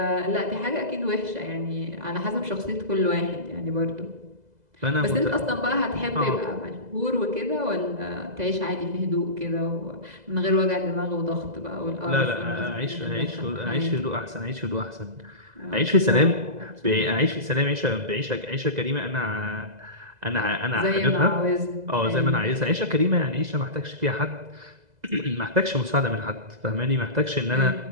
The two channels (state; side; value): late; left; 2.0 ms